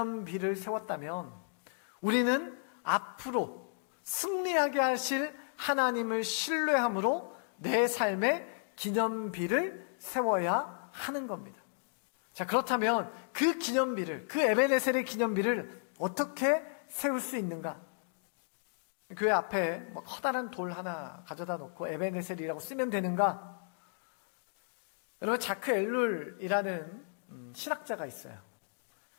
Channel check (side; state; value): right; silent; digital silence